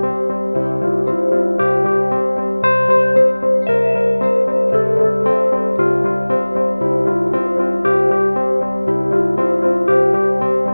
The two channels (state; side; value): inverted; both; correlation -1.00